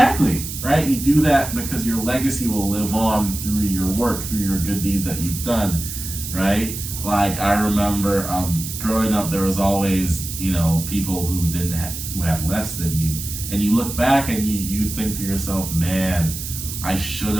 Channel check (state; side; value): noise; right; hiss, 7 dB below the sound